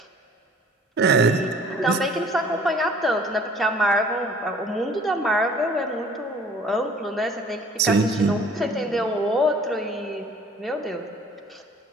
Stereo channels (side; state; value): both; normal; correlation 0.52